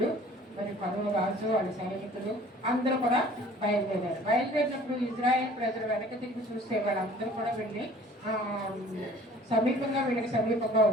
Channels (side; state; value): both; normal; correlation 0.50